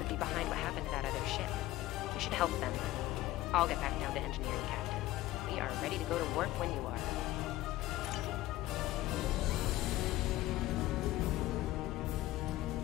be behind what happened to that other ship. We should help them. I'll get back down to engineering, Captain. We are ready to go to warp when you are.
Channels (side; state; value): right; quieter; 16.3 dB